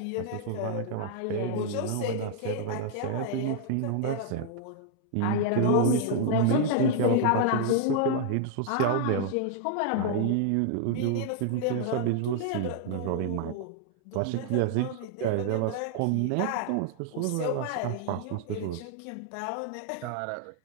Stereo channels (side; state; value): both; different; correlation 0.00